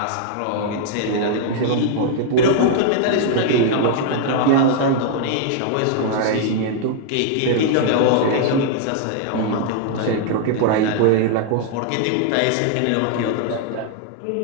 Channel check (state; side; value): different; both; correlation 0.00